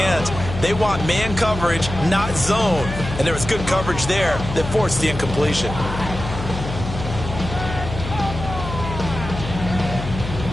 They want man coverage, not zone. And there was good coverage there that forced the incompletion.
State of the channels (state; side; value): noise; left; hum, 7 dB below the sound